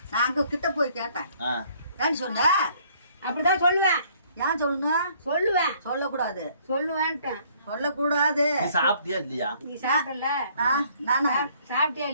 நான் அங்க கிட்ட போய் கேட்டேன். ஏன்னு சொன்ன? அப்படிதான் சொல்லுவேன். ஏன் சொல்லணும்? சொல்லுவேன். சொல்லக்கூடாது. சொல்லுவேன்ட்டேன். சொல்லக்கூடாது. நீ சாப்பிட்டியா இல்லையா? நீ சாப்பிடல? நானா சாப்பிட்டியா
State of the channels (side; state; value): both; inverted; correlation -0.62